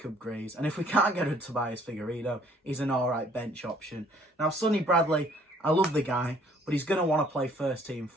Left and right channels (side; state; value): both; normal; correlation 0.60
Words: Grieves. And if we can't get a Tobias Figueiredo, he's an all-right bench option. Now, Sonny Bradley, I love the guy, but he's going to want to play first-team